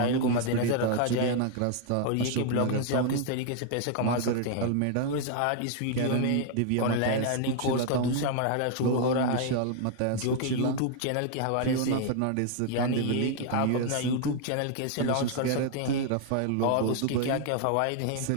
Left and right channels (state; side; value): different; both; correlation 0.00